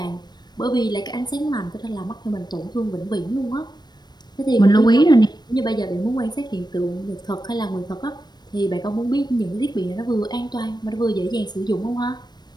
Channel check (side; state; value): right; late; 0.20 ms